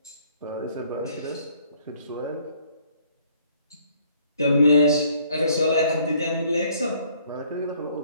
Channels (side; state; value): both; inverted; correlation -0.62